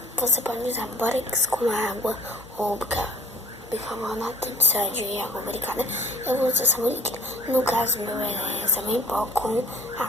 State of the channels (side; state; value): both; normal; correlation 0.51